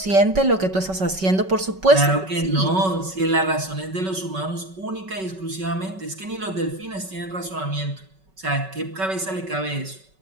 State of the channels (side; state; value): left; late; 5.3 ms